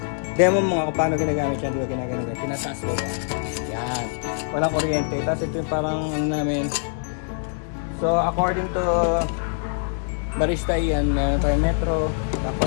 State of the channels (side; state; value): right; silent; digital silence